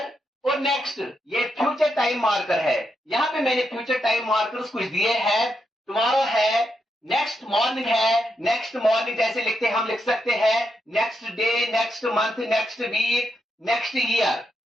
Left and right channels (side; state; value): both; normal; correlation 0.82